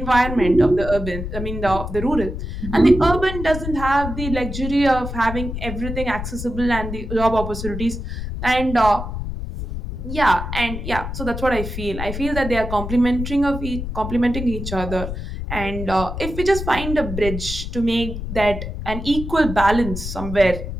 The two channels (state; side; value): noise; left; rumble, 6 dB below the sound